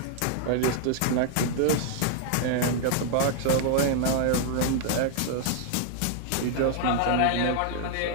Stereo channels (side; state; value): both; different; correlation 0.00